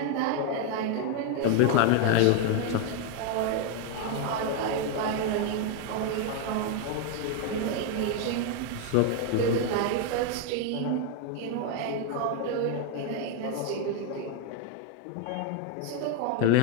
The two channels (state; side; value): different; both; correlation 0.01